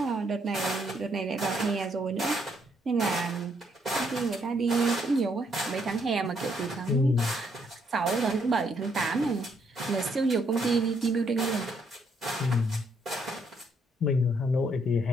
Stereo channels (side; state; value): both; normal; correlation 0.72